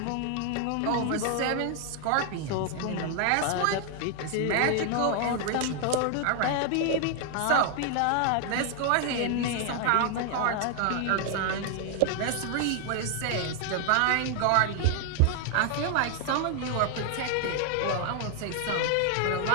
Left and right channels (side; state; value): both; different; correlation 0.00